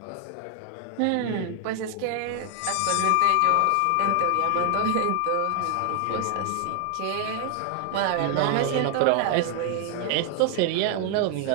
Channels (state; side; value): different; both; correlation 0.00